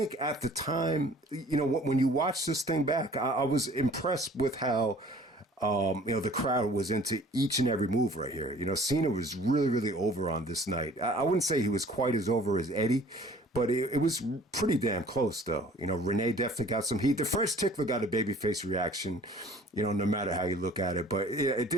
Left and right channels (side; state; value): both; normal; correlation 0.51